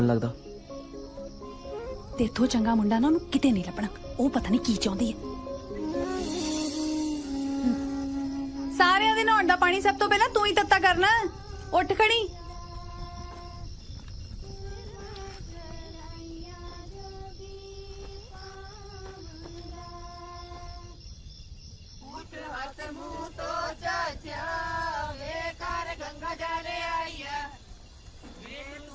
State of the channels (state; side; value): identical; both; correlation 1.00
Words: ਲੱਗਦਾ। ਤੇ ਇੱਥੋਂ ਚੰਗਾ ਮੁੰਡਾ ਨਾ ਉਹਨੂੰ ਕਿਤੇ ਨਹੀਂ ਲੱਭਣਾ, ਉਹ ਪਤਾ ਨਹੀਂ ਕੀ ਚਾਹੁੰਦੀ ਹੈ। ਸਾਰਿਆਂ ਦੇ ਨਹਾਉਣ ਦਾ ਪਾਣੀ ਸਭ ਤੋਂ ਪਹਿਲਾਂ ਤੂੰ ਹੀ ਤੱਤਾ ਕਰਨਾ। ਉੱਠ ਖੜੀ।